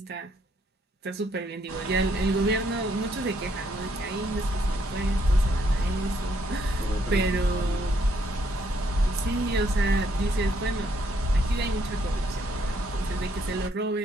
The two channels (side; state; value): both; normal; correlation 0.71